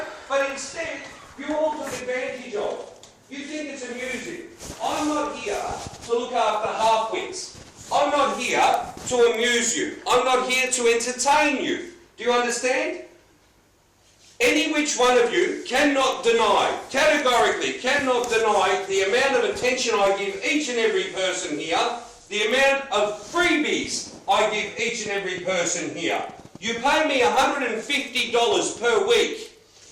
But instead, you all took advantage of. You think it's amusing. I'm not here to look after half-wits. I'm not here to amuse you. I'm not here to entertain you. Do you understand? Any which one of you cannot deny, categorically cannot deny the amount of attention I give each and every person here, the amount of freebies I give each and every person here. You pay me $150 per week.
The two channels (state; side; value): identical; both; correlation 1.00